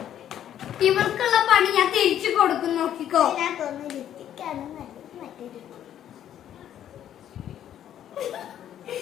ഇവർക്കുള്ള പണി ഞാൻ തിരിച്ചു കൊടുക്കും നോക്കിക്കോ.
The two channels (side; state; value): right; quieter; 10.7 dB